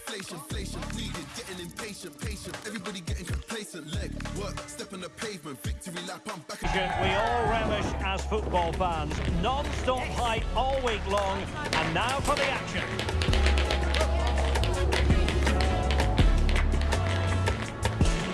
needed, getting impatient, patient, everybody getting complacent, leg, work, step on the pavement, victory lap, I'm back again. We all relish as football fans, non-stop hype all week long, and now for the action.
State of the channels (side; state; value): both; identical; correlation 1.00